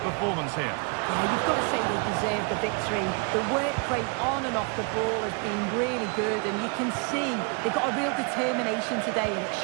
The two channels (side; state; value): left; quieter; 33.7 dB